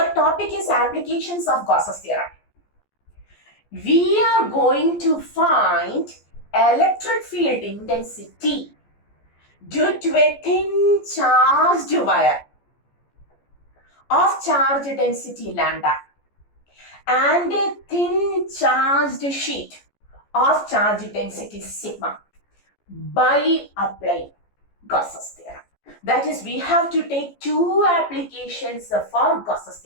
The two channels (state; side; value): late; right; 14 ms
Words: topic is applications of Gauss's theorem. We are going to find electric field intensity due to a thin charged wire of charge density lambda and a thin charged sheet of charge density sigma by applying Gauss's theorem. That is, we have to take two applications for Gauss's